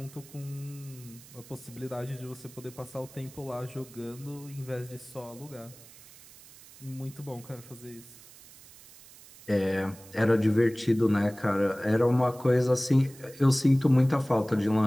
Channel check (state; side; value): noise; right; hiss, 21 dB below the sound